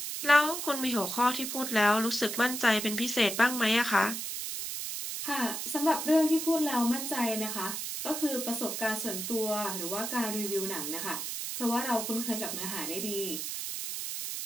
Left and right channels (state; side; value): noise; right; hiss, 4 dB below the sound